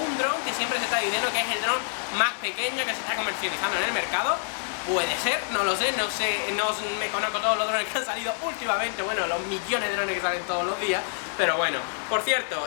dron que siempre se está diciendo que es el dron más pequeño que se está comercializando en el mercado. Puede ser, no lo sé, no me conozco todos los drones que han salido últimamente, bueno, los millones de drones que salen todos los días, pero bueno. Por cierto,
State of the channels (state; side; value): silent; right; 60 dB below the other